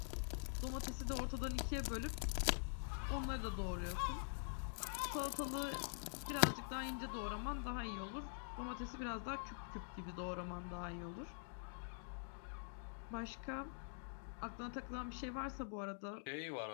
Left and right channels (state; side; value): silent; right; digital silence